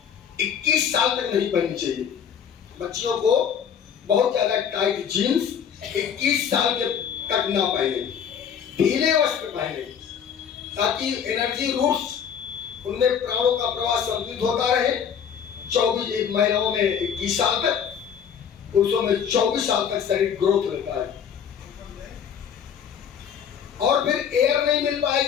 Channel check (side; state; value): right; quieter; 7.8 dB